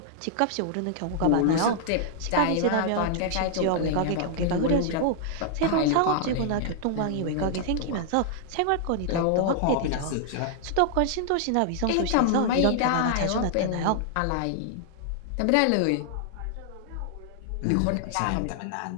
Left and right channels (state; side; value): different; both; correlation -0.01